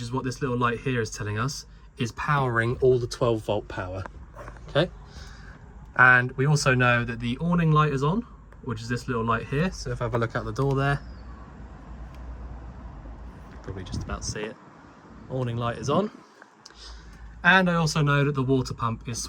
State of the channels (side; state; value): both; identical; correlation 1.00